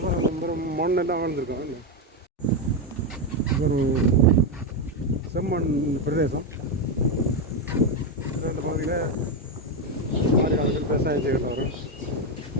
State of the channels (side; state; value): both; normal; correlation 0.08